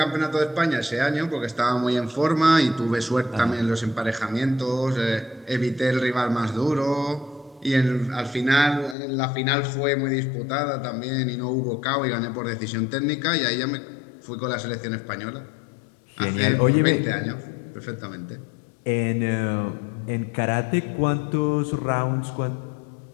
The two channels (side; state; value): right; drops out; at 9.0 s